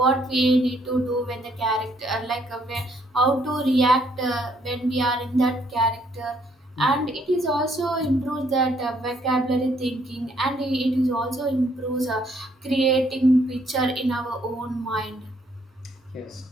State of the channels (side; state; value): both; normal; correlation 0.68